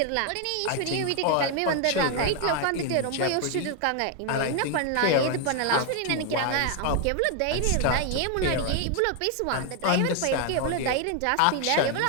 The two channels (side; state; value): both; different; correlation 0.01